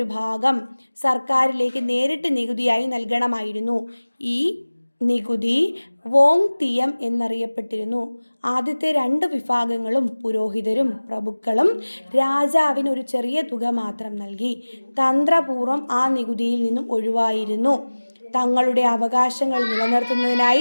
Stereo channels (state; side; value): inverted; both; correlation -1.00